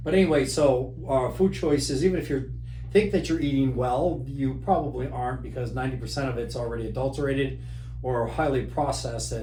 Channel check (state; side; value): identical; both; correlation 1.00